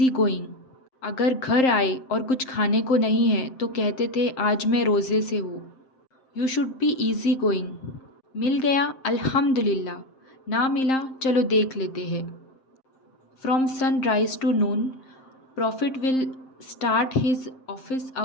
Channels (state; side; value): late; right; 7.6 ms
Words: going. अगर घर आए और कुछ खाने को नहीं है तो कहते थे आज मैं रोज़े से हूँ। You should be easy going. मिल गया अल्हम्दुलिल्लाह, ना मिला चलो देख लेते हैं। From sunrise to noon prophet will start his office